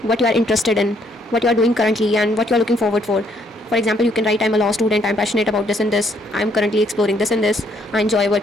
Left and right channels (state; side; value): normal; both; correlation 0.69